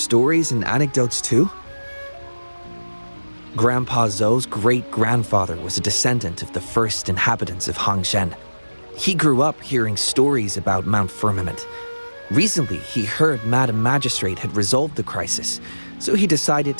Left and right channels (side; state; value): both; inverted; correlation -1.00